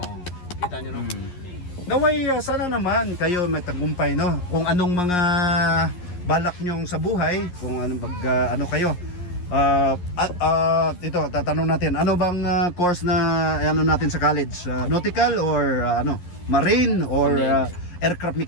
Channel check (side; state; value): right; late; 11 ms